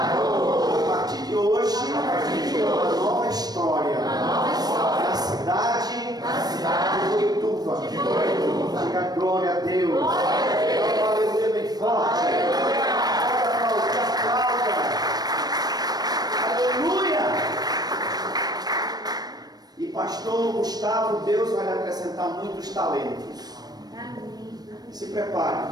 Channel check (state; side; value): late; left; 0.19 ms